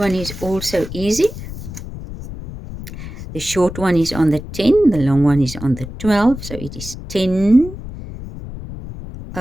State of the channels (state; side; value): noise; left; rumble, 11 dB below the sound